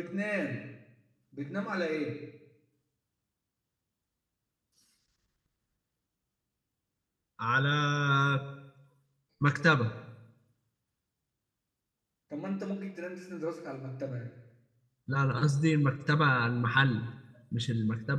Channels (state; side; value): identical; both; correlation 1.00